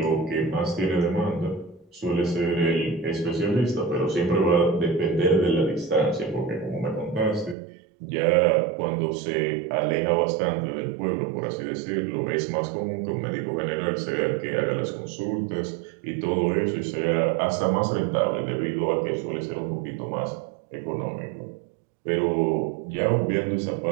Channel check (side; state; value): left; drops out; at 7.6 s